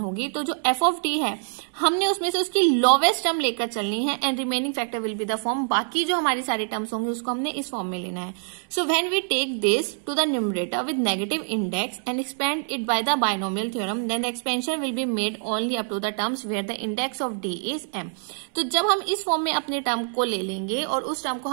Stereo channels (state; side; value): silent; left; 62 dB below the other